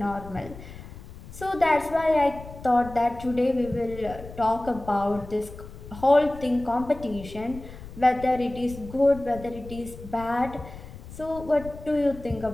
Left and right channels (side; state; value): left; noise; rumble, 15 dB below the sound